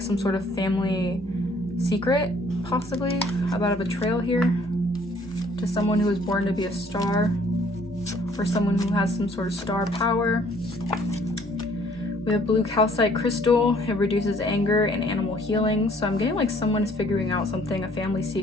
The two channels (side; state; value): both; normal; correlation 0.60